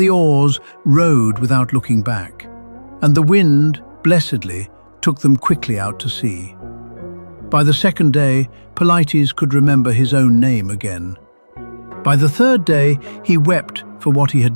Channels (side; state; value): both; inverted; correlation -1.00